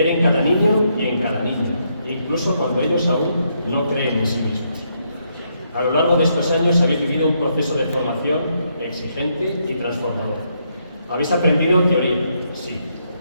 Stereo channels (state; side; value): inverted; both; correlation -0.77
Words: en cada niño y en cada niña, incluso cuando ellos aún no creen en sí mismos. A lo largo de estos años habéis vivido un proceso de formación exigente y transformador. Habéis aprendido teoría, sí,